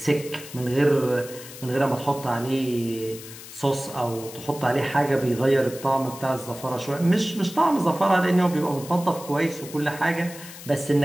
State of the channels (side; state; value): left; noise; hiss, 15 dB below the sound